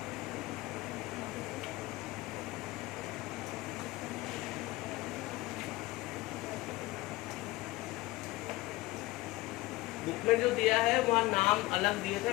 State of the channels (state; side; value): quieter; right; 19.9 dB